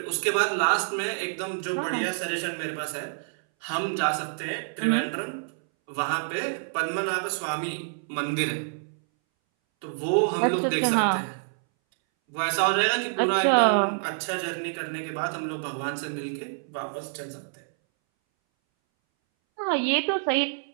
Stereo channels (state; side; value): silent; left; 60 dB below the other